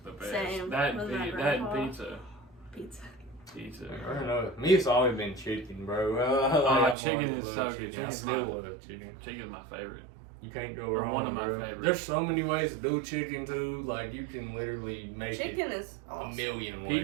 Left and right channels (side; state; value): left; drops out; at 7.0 s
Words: the best. Same That with my that grandpa. pizza. Pizza. Pizza. I don't know. Me, it's always been chicken, bro. Chicken always is loved so good. chicken. I Chicken's still my- love chicken. Chicken's my favorite. You can't go Or wrong. one of my bro. favorites. There's so many ways to do chicken too. Like you can literally make Chicken it is a awesome. million ways.